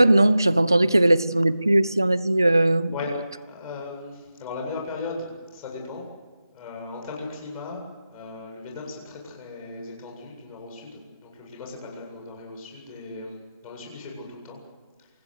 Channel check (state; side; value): inverted; both; correlation -0.93